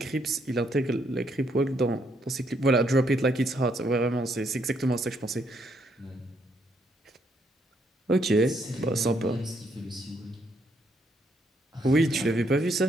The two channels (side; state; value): both; normal; correlation 0.73